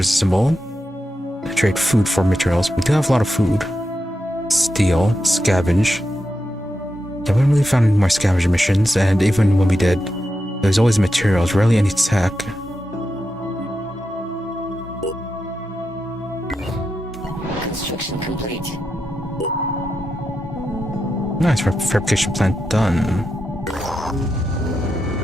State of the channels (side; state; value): both; normal; correlation 0.87